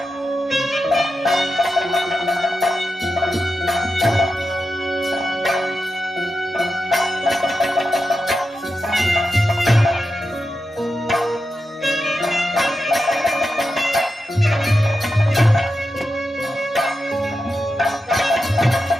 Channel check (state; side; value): normal; both; correlation 0.89